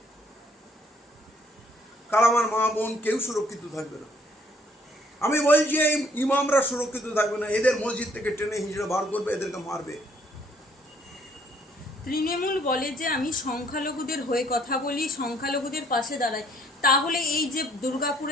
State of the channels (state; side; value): normal; both; correlation 0.63